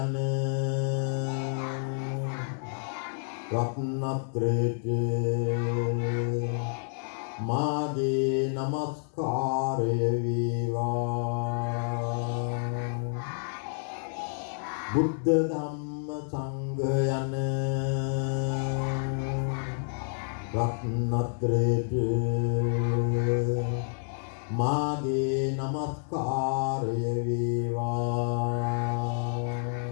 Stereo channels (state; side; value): silent; right; digital silence